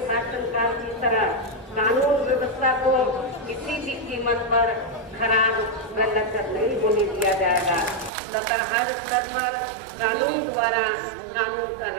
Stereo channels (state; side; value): drops out; left; at 8.1 s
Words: शासनकाल की तरह कानून व्यवस्था को किसी भी कीमत पर खराब व लचर नहीं होने दिया जाएगा तथा हर स्तर पर कानून द्वारा कानून का